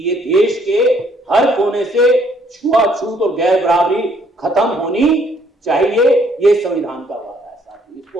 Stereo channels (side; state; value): both; normal; correlation 0.66